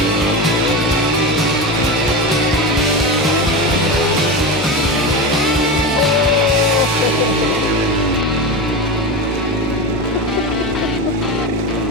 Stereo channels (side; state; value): both; normal; correlation 0.21